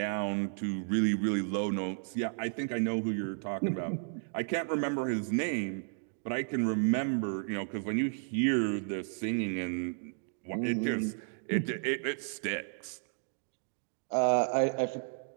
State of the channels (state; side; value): silent; left; 55 dB below the other